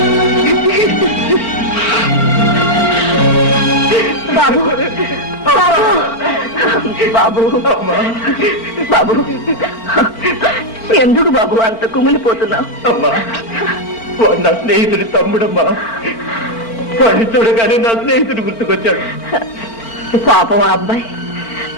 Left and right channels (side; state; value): right; late; 4.4 ms